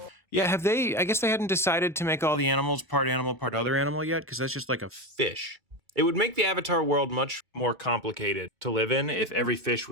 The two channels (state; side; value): normal; both; correlation 0.18